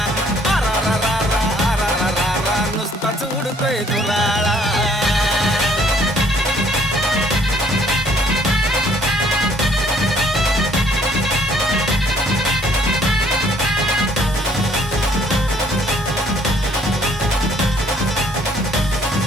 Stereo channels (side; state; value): both; normal; correlation 0.61